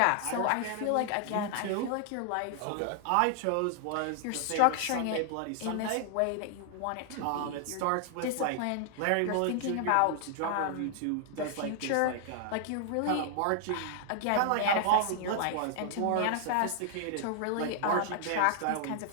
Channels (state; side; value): different; both; correlation 0.00